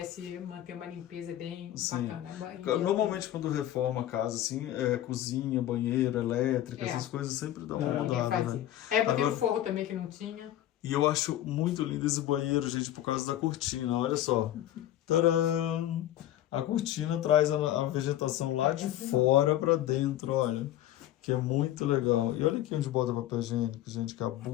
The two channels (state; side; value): quieter; right; 13.0 dB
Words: manter uma limpeza bem bacana. Normalmente quando reforma a casa, assim, cozinha, banheira, elétrica, essas coisas sempre dão uma mudada, né? Eu botei o forro também que não tinha. E eu acho muito lindo esse banheiro, gente, por causa da cortina. Olha só. Tcharam! A cortina traz a vegetação lá de fora pra dentro, olha. Que é muito legal. E olha aqui onde bota papel higiênico, gente, que